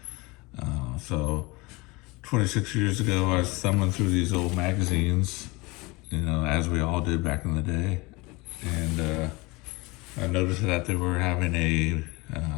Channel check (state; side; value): quieter; right; 24.4 dB